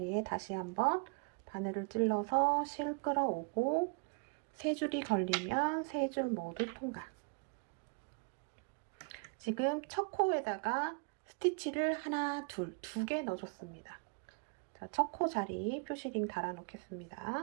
다시 한번 바늘을 찔러서 실 끌어오고 3줄이 걸리면 3줄 모두 통과. 지금 첫 코에다가 스티치를 하나, 둘, 2개 넣어줬습니다. 자, 첫 코 자리 표시링 달아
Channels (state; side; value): quieter; left; 36.6 dB